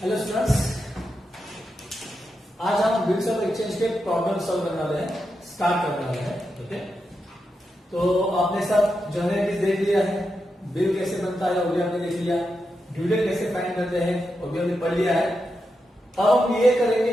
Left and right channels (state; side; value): normal; both; correlation 0.87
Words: Hello students, आज हम bills of exchange के प्रॉब्लम सॉल्व करने वाले हैं, स्टार्ट करने वाले हैं। ओके, तो आपने सब जनरल देख लिया है, बिल कैसे बनता है वो भी हमने देख लिया, ड्यू डेट कैसे फाइंड करते हैं वो भी हमने पढ़ लिया है। अब हम ये करेंगे